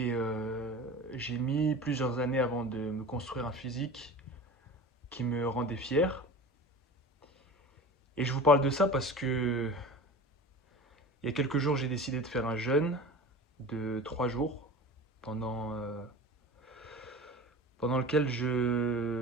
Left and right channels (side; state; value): both; normal; correlation 0.35